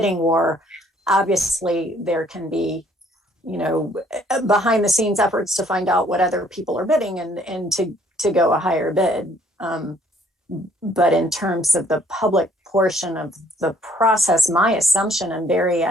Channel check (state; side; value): normal; both; correlation 0.62